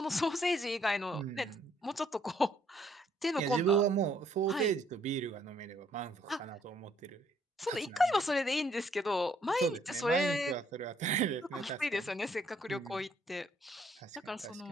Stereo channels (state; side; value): normal; both; correlation 0.67